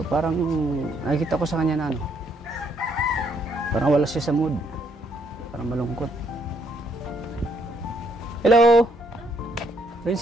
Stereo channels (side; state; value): both; normal; correlation 0.70